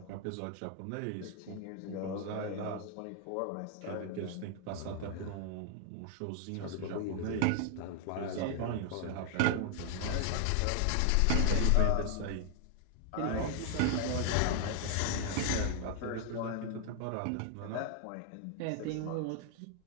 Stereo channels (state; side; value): different; both; correlation 0.00